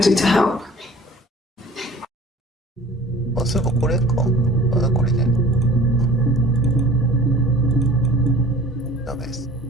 to help? あ、そういえばこれか。あ、これね。ダメです。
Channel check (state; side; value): normal; both; correlation 0.46